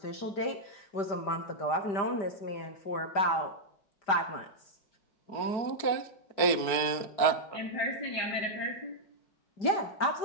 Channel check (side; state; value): right; late; 4.6 ms